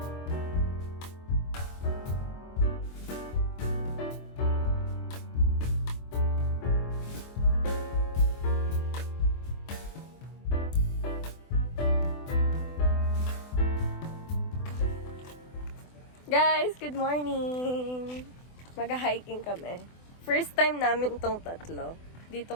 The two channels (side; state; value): right; late; 24 ms